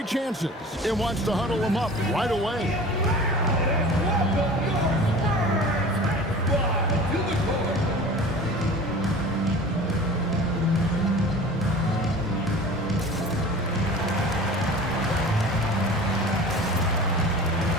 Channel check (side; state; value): both; normal; correlation 0.40